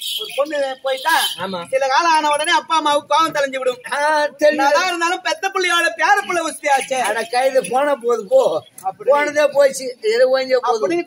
ஒரு பொண்ணு போயிட்டா சில காலம் ஆன உடனே அப்பா அம்மாவுக்கு கோவம் தெளிஞ்சு விடும். இருந்தாலும் பெத்த பிள்ளையோட பேர பிள்ளை வசதியாச்சு. கைது போன போது போ, போனதே போச்சு. அப்படின்னு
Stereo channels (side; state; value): both; identical; correlation 1.00